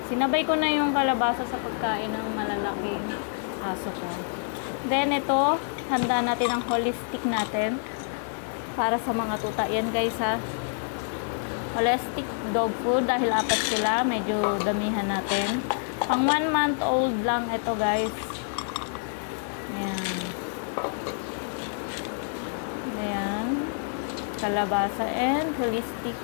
Sinabay ko na yung kalabasa sa pagkain ng malalaking aso ko. Then ito, handa natin ang holistic natin para sa mga tuta. Yan guys ha. Holistic dog food dahil 4 sila, medyo damihan natin. Pang 1 month old lang ito guys. Ayan. Ayan. Kalabasa and holistic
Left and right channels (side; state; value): right; silent; 56 dB below the other